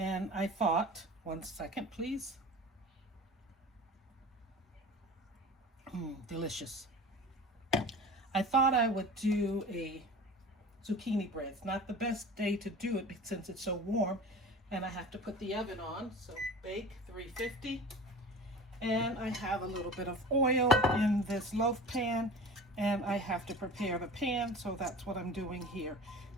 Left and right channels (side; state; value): both; normal; correlation 0.38